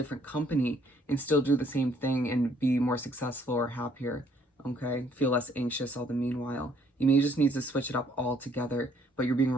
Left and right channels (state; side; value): normal; both; correlation 0.64